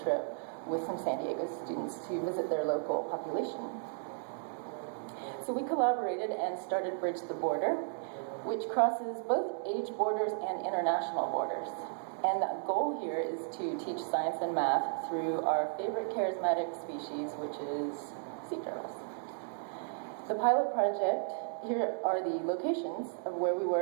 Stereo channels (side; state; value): left; silent; digital silence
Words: trip with some San Diego students to visit their local population. So we collaborated and started Bridge the Border, which crosses both age borders and international borders. And the goal here is to teach science and math through our favorite charismatic species, which is sea turtles. The pilot project, here are the locations of where we